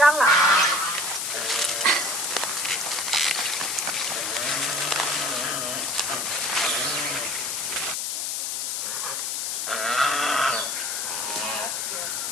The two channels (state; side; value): noise; left; hiss, 1 dB below the sound